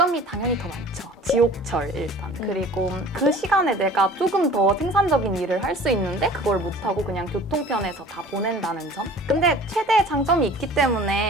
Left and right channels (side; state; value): both; normal; correlation 0.45